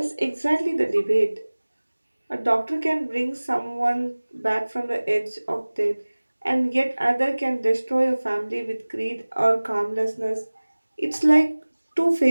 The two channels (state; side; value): inverted; both; correlation -1.00